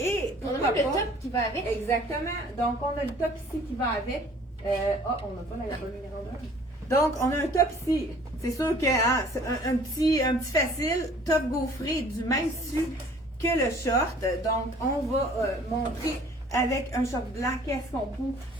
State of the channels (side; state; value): both; normal; correlation 0.53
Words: On a pourquoi même le pas- top qui va avec. Exactement. Donc, on a le top ici qui va avec. On n'a pas la bonne numéro 1. Donc, on a un top ici. C'est sûr que c'est un petit facile, top gaufré du même tissu que le short. Donc, on va montrer avec un short blanc qu'est-ce qu'on